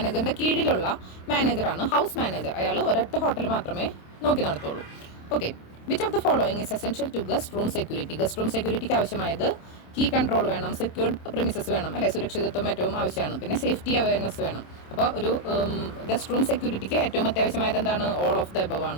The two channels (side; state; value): right; late; 27 ms